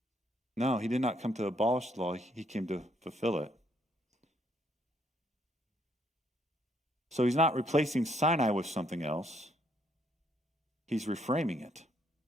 No, he did not come to abolish the law. He came to fulfill it. So he's not replacing Sinai with something else. He's reframing it.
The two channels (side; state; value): both; normal; correlation 0.70